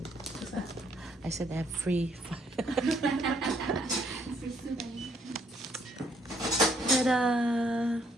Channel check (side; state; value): both; normal; correlation 0.68